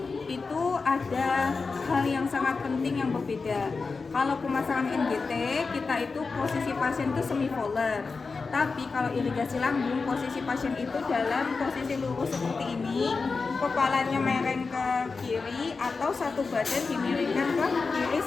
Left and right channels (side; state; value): right; quieter; 4.4 dB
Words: itu ada hal yang sangat penting yang berbeda. Kalau pemasangan NGT kita itu posisi pasien itu semipolar. Tapi kalau irigasi lambung, posisi pasien itu dalam posisi lurus seperti ini, kepalanya mereng ke kiri atau satu badan dimiringkan ke kiri